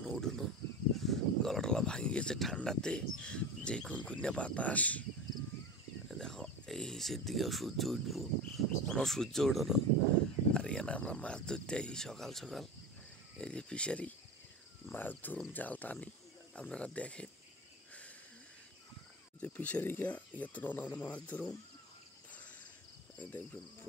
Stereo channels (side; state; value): both; normal; correlation 0.28